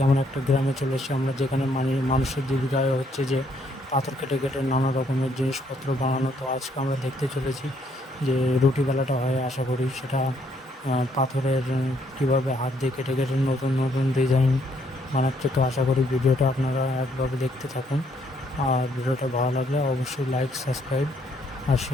আমরা একটা গ্রামে চলে এসেছি আমরা, যেখানে মানুষের জীবিকা হচ্ছে যে পাথর কেটে কেটে নানা রকমের জিনিসপত্র বানানো। তো আজকে আমরা দেখতে চলেছি যে রুটি বেলাটা হয়, আশা করি সেটা পাথরের কীভাবে হাত দিয়ে কেটে কেটে নতুন নতুন ডিজাইন বানাচ্ছে। তো আশা করি ভিডিওটা আপনারা একভাবে দেখতে থাকুন, আর ভিডিওটা ভালো লাগলে অবশ্যই লাইক, সাবস্ক্রাইব আর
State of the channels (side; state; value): both; normal; correlation 0.70